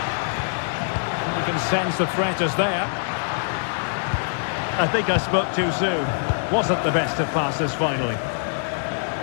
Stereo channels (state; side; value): silent; right; digital silence